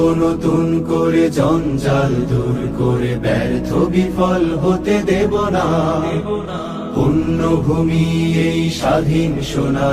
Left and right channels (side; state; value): both; identical; correlation 1.00